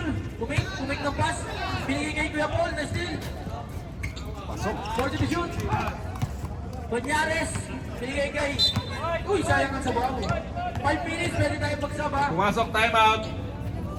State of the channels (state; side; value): identical; both; correlation 1.00